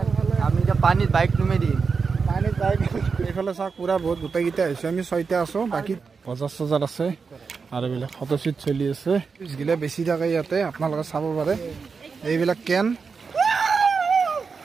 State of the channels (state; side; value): quieter; left; 5.2 dB